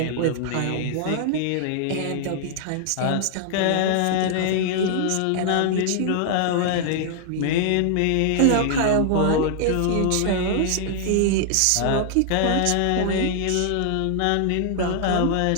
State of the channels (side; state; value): both; different; correlation -0.01